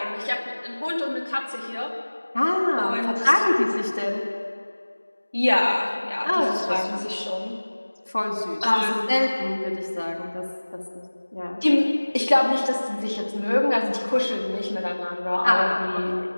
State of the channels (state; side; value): inverted; both; correlation -1.00